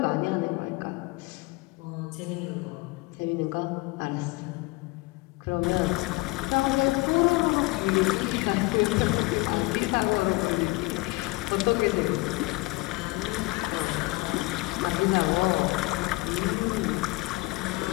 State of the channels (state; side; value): quieter; right; 23.2 dB